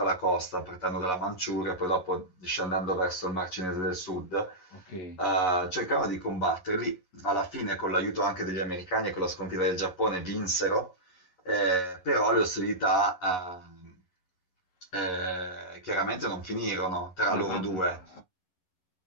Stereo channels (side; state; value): right; late; 11 ms